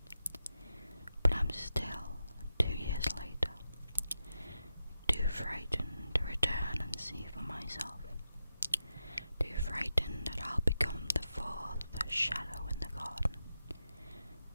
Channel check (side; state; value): both; inverted; correlation -0.89